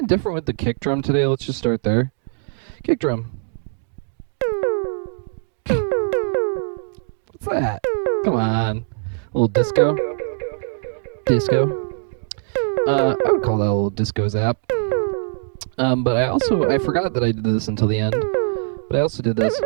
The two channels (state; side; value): silent; left; digital silence